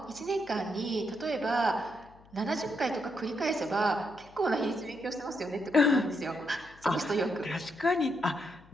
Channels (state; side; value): noise; left; hum, 25 dB below the sound